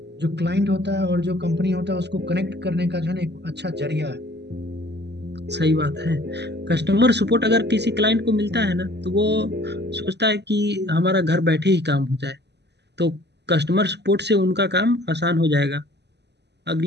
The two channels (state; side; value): late; left; 0.50 ms